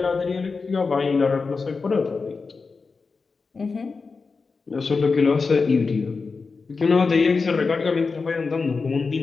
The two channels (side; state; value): right; quieter; 4.5 dB